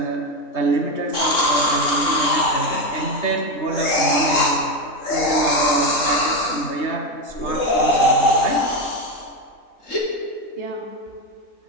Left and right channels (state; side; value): late; right; 3.7 ms